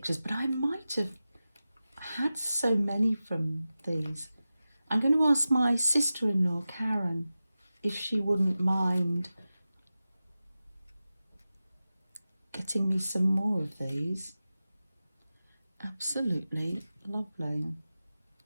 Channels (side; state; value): both; inverted; correlation -0.94